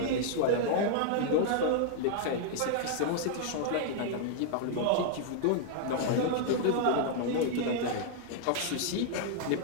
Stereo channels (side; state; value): both; different; correlation -0.01